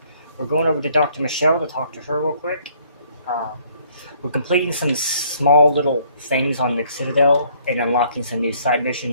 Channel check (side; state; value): both; inverted; correlation -0.63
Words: We're going over to Dr. Michelle to talk to her real quick. We're completing some small little things on the Citadel and unlocking some new side